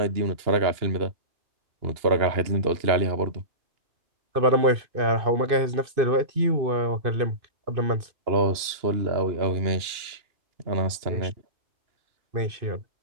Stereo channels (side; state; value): left; late; 2.8 ms